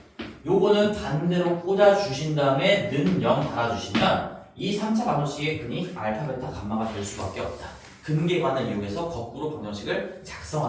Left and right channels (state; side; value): identical; both; correlation 1.00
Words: 요거는 반대로 꽂아주신 다음에 는 0 달아주시면 이 3차 방정식의 근이 알파, 베타, 감마가 될 수밖에 없다. 근계관을 이용해서 거꾸로 방정식을